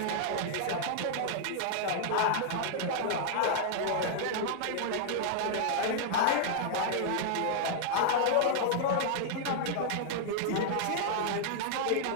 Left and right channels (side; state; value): both; different; correlation -0.01